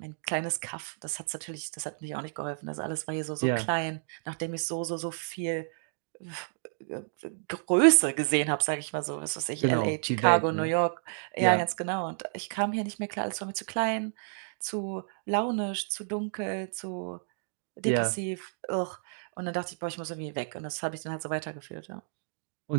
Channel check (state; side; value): silent; left; digital silence